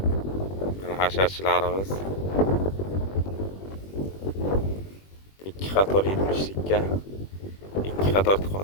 Mana hasharchilarimiz 2 qator 70likka 2 qator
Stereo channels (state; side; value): late; right; 21 ms